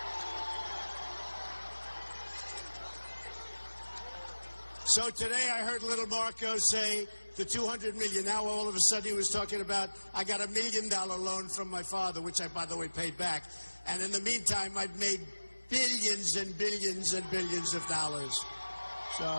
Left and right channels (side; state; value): both; inverted; correlation -1.00